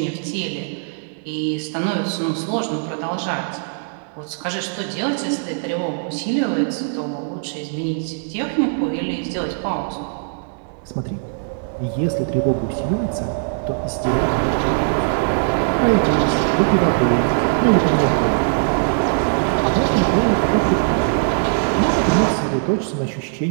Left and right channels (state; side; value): silent; left; digital silence